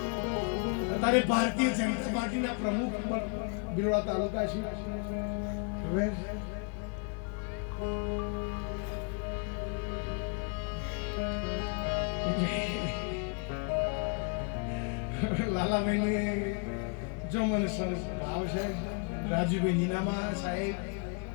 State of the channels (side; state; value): right; quieter; 36.2 dB